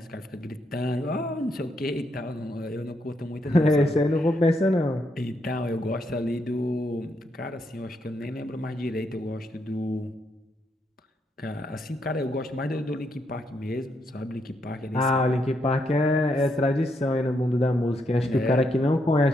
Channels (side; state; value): both; normal; correlation 0.78